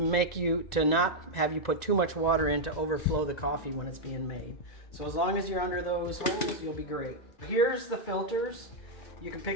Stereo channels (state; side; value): late; right; 1.9 ms